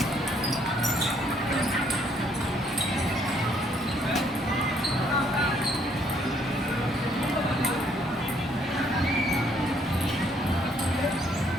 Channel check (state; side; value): normal; both; correlation 0.67